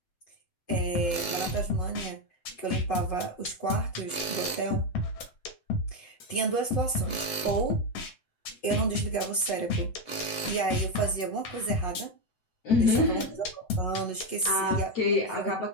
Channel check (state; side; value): late; right; 7.9 ms